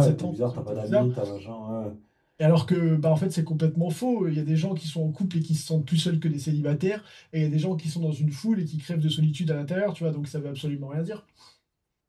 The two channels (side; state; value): both; identical; correlation 1.00